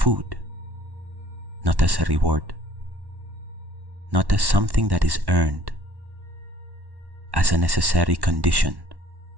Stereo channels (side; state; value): left; late; 1.1 ms